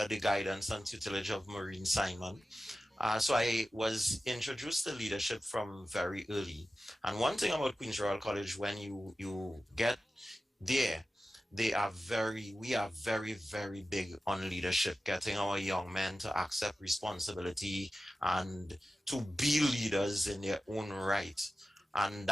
the guidance and tutelage of Maureen Simon. So I was introduced to leadership from very early. And one thing about Queens Royal College, when you get there, we are very, very big on leadership, getting our young men to accept responsibility and to be leaders in their own right. And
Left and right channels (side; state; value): both; normal; correlation 0.94